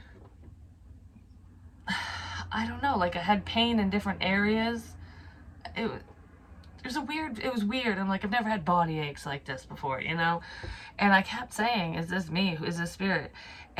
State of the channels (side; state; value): both; identical; correlation 1.00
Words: I don't know, like I had pain in different areas. It was weird. I'm like, I've never had body aches like this before, you know? And I kept saying, is this me? Is this spirit?